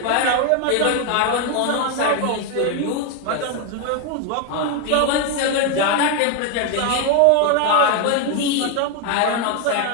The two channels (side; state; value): both; different; correlation 0.01